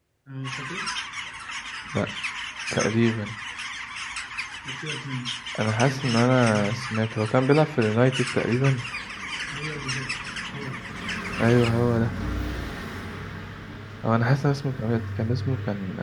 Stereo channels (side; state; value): both; identical; correlation 1.00